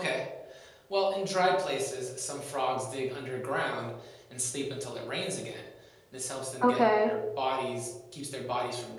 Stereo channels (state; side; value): identical; both; correlation 1.00